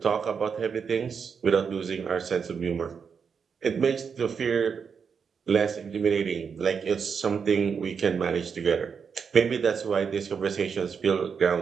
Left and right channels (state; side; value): quieter; left; 6.3 dB